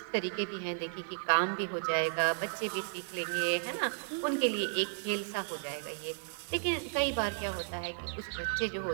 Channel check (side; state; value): left; silent; digital silence